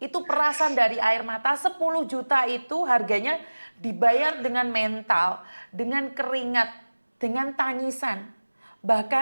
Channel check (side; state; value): both; inverted; correlation -1.00